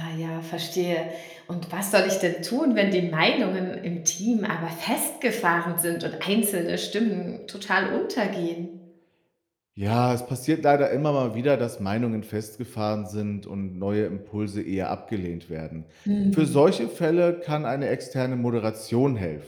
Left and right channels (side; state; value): both; identical; correlation 1.00